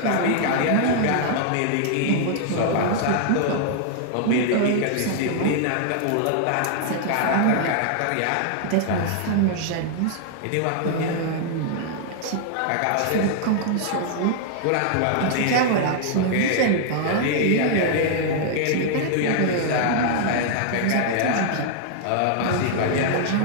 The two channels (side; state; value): both; different; correlation -0.01